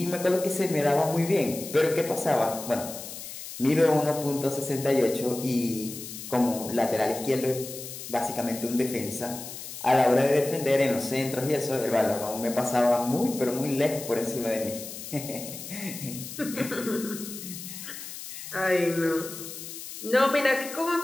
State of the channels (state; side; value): noise; left; hiss, 11 dB below the sound